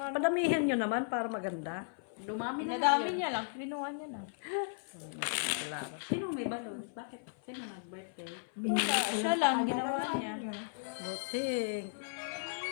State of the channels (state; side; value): silent; right; 54 dB below the other